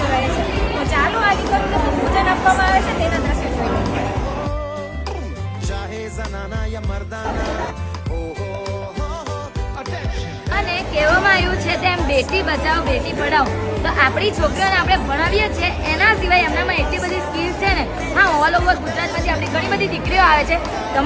રહે છે. તો ચાલો આ દીકરીઓને પૂજન આપવામાં આવે છે તેના દ્રશ્ય જોઈએ. અને કહેવામાં આવ્યું છે તેમ બેટી બચાવો બેટી પઢાઓ. તો આપણી છોકરીઓને આપણે ભણાવીએ છીએ એના સિવાય એમનામાં એટલી બધી સ્કિલ્સ છે ને. હા, ઓલ ઓવર ગુજરાતમાંથી આપણી ઘણી બધી દીકરીઓ આવે છે.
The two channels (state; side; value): identical; both; correlation 1.00